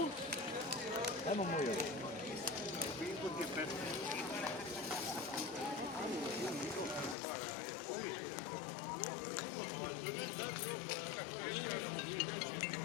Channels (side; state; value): right; drops out; at 7.2 s